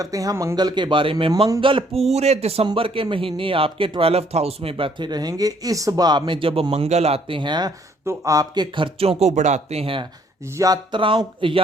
हैं मंगल के बारे में। मंगल पूरे दिसंबर के महीने आपके 12th हाउस में बैठे रहेंगे। इस भाव में जब मंगल आते हैं तो आपके खर्चों को बढ़ाते हैं।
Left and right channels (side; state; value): both; normal; correlation 0.64